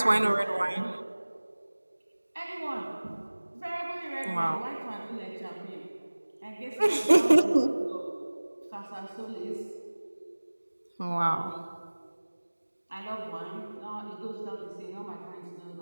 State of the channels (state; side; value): inverted; both; correlation -1.00